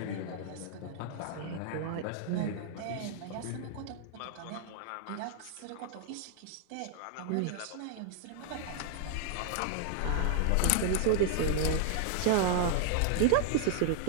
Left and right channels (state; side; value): different; both; correlation 0.00